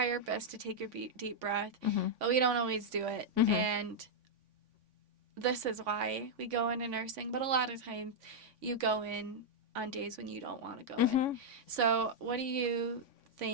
our best to take a deep breath, but we don't always do it. And this is why we go into nursing, but a lot of times you go in on days when you don't want to go in. So what do you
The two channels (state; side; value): late; left; 3.5 ms